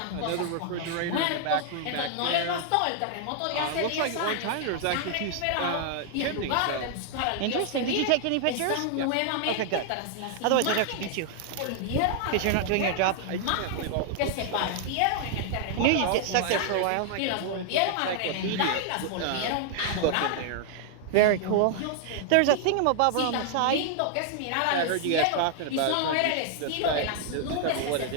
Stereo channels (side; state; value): both; different; correlation 0.00